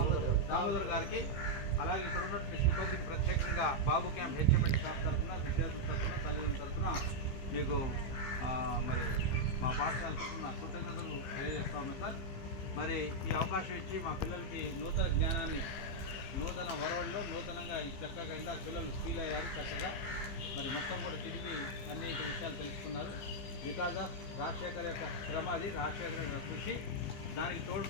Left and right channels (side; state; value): right; late; 15 ms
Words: Damodar గారికి, అలాగే ఇక్కడ ఉన్నటువంటి సిబ్బందికి ప్రత్యేకంగా బాబు క్యాంప్ హెచ్ఎంఎల్ స్టాఫ్ తరఫున, విద్యార్థుల తరఫున, తల్లిదండ్రుల తరఫున మీకు మరి మా పాఠశాల తరఫున కృతజ్ఞతలు తెలియజేస్తా ఉన్నాం సార్. మరి ఈ అవకాశం ఇచ్చి మా పిల్లలకి నూతన జ్ఞానాన్ని, నూతన వరవల్లో నూతనంగా చక్కగా ఇంకా పిల్లలు ఫీల్ అయ్యారు చక్కగా. మరి మొత్తం కూడా తిరిగి అనేక విషయాలు తెలుసుకున్నారు. బికాజ్ ఆఫ్ రాజశేఖర్ యొక్క శ్రమ, అది రాజశేఖర్ యొక్క కృషి, దానికి